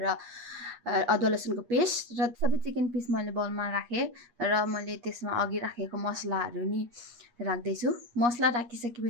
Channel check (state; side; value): late; left; 8.4 ms